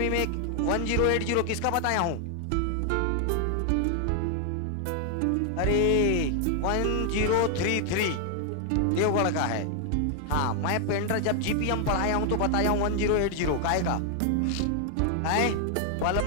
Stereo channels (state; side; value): different; both; correlation 0.00